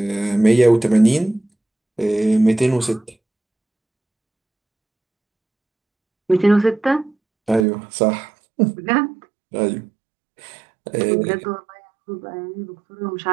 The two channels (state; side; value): drops out; left; at 7.7 s